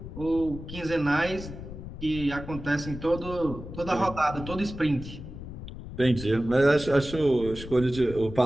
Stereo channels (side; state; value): left; noise; rumble, 11 dB below the sound